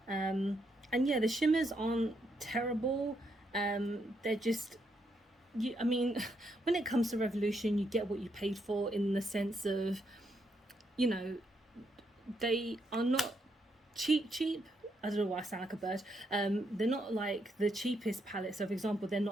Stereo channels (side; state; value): both; normal; correlation 0.78